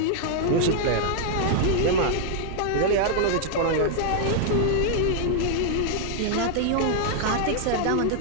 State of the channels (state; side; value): different; both; correlation -0.01